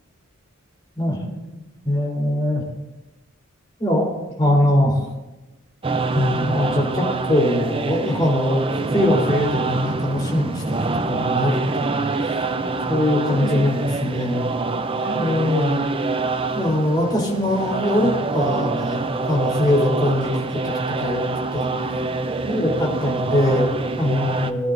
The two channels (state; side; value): normal; both; correlation 0.63